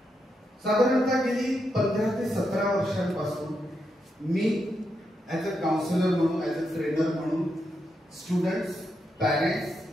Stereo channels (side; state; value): both; normal; correlation 0.83